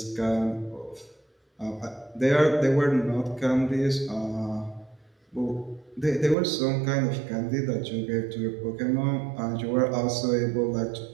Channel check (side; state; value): left; drops out; at 6.4 s